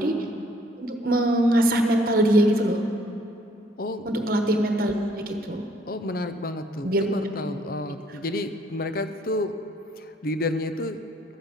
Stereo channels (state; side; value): normal; both; correlation 0.64